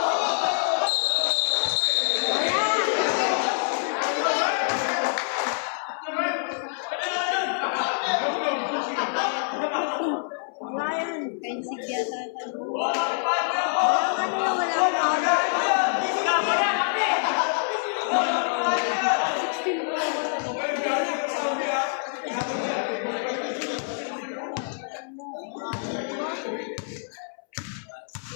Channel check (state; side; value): silent; right; 60 dB below the other